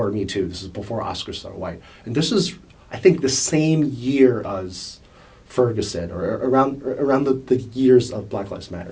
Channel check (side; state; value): both; identical; correlation 1.00